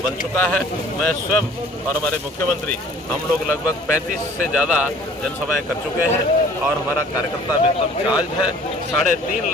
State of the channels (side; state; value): both; normal; correlation 0.51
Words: बन चुका है। मैं स्वयं और हमारे मुख्यमंत्री हम लोग लगभग 35 से ज़्यादा जनसभाएं कर चुके हैं और हमारा कार्यकर्ता भी एकदम चार्ज है। 3.5